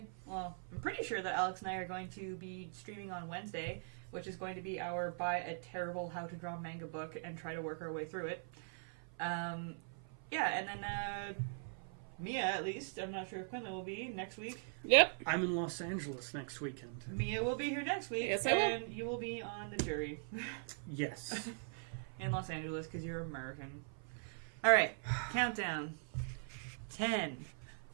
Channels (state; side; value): silent; left; 50 dB below the other